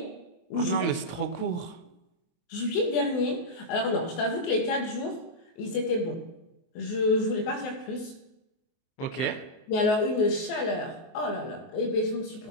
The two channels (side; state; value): right; late; 24 ms